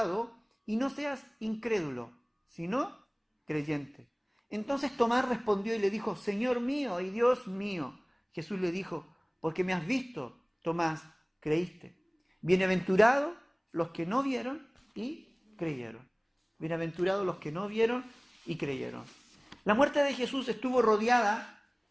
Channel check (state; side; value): identical; both; correlation 1.00